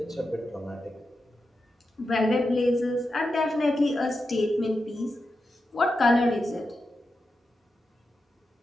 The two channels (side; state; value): both; normal; correlation 0.89